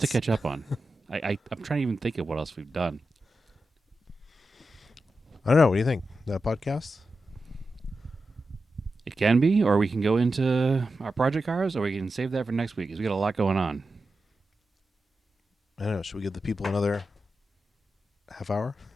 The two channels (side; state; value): both; normal; correlation 0.90